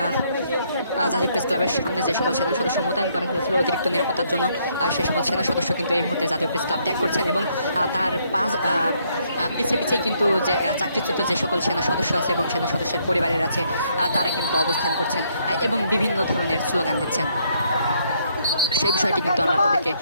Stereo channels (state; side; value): inverted; both; correlation -0.71